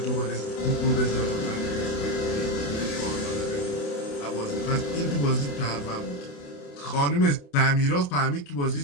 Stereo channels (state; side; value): late; right; 28 ms